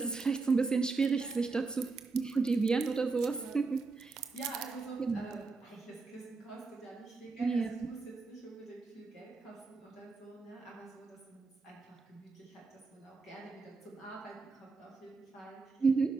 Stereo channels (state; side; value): quieter; left; 4.2 dB